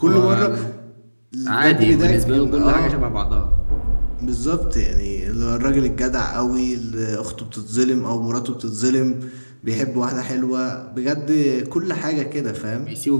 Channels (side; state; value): both; inverted; correlation -1.00